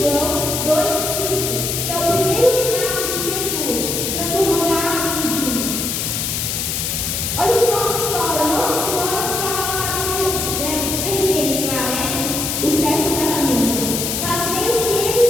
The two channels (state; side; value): noise; left; hiss, 1 dB below the sound